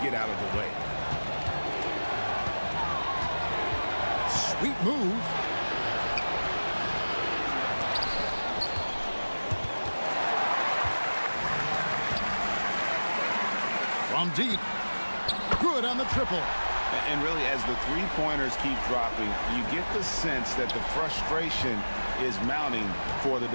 get out of the way. Sweet move. From deep. Good on the triple. And really, as the three-pointers keep dropping, you get the sense that the frustration is mounting for the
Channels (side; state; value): both; inverted; correlation -1.00